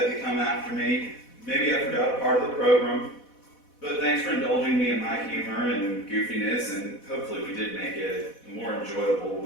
to come after me. Maybe I forgot a part of the program. But thanks for indulging me in my humor and goofiness, and hopefully we did make it a more enjoyable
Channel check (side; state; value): right; late; 4.1 ms